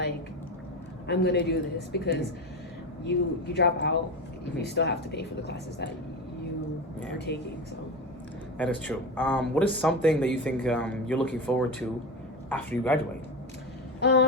I'm going to do this, because you drop out, you still have to pay for the classes that you are taking. So that is true. What is something that you think you're looking forward to after you graduate?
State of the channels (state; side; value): normal; both; correlation 0.21